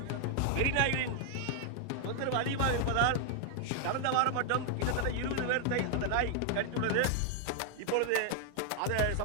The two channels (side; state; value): both; different; correlation 0.00